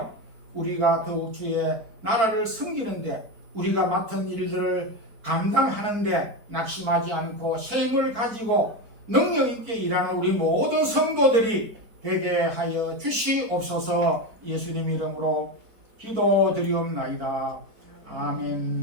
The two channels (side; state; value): left; late; 4.5 ms